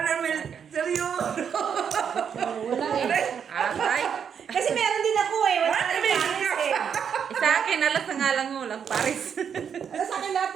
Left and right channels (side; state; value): left; quieter; 7.5 dB